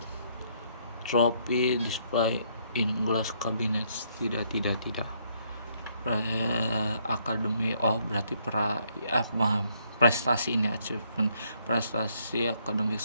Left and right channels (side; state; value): both; inverted; correlation -0.71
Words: Trophy display in glass cabinets. Tidak. Akademi, berarti prestasi ini, achievement, prestasi akademik